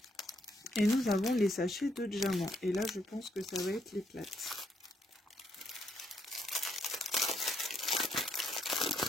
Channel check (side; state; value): both; normal; correlation 0.74